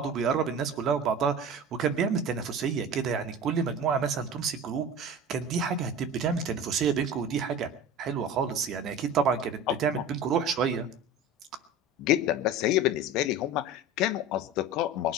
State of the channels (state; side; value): normal; both; correlation 0.33